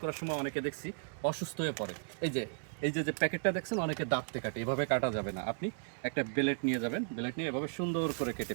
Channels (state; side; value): silent; left; digital silence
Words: করার সময় অনেকে দেখছি অসুস্থ হয়ে পড়ে। এই যে প্যাকেটটা দেখছেন, অনেকে দাঁতে কাটে, এভাবে কাটা যাবে না। আপনি একটা ব্লেড নিয়ে যাবেন, ব্লেড নিয়ে এভাবে সুন্দর করে কেটে